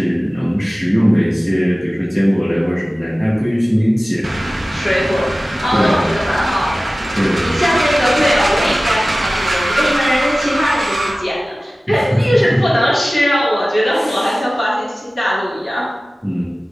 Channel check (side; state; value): both; normal; correlation 0.97